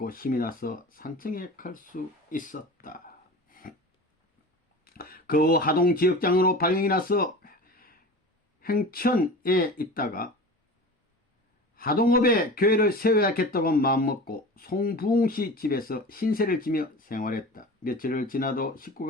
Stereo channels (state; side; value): normal; both; correlation 0.35